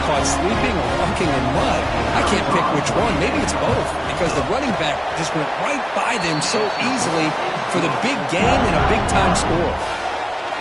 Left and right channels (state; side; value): identical; both; correlation 1.00